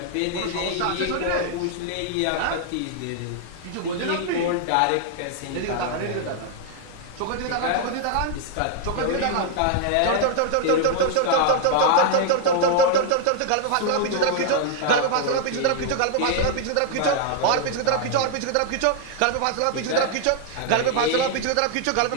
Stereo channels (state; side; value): different; both; correlation 0.00